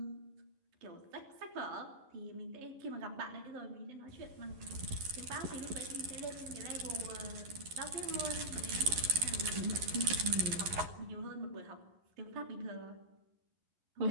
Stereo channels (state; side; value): late; left; 11 ms